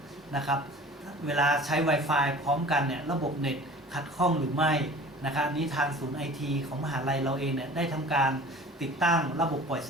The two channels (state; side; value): normal; both; correlation 0.43